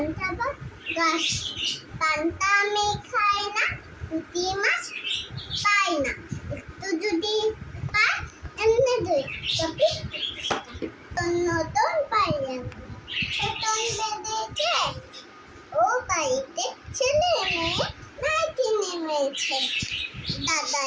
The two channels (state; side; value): identical; both; correlation 1.00